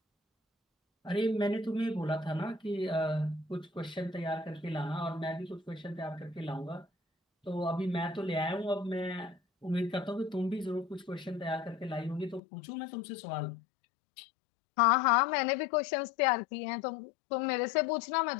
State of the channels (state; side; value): drops out; right; at 12.4 s